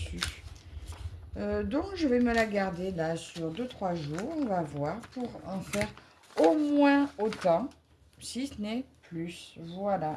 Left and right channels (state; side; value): identical; both; correlation 1.00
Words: Donc, je vais me la garder là sur 2-3 jours, on va voir, pour en faire au moins autant, si ce n'est plus.